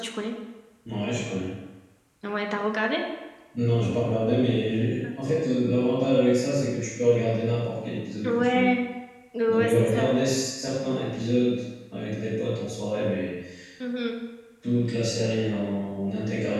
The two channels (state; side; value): identical; both; correlation 1.00